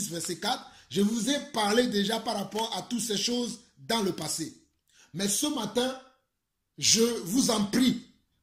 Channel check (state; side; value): identical; both; correlation 1.00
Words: verset 4. Je vous ai parlé déjà par rapport à toutes ces choses dans le passé. Mais ce matin, je vous en prie,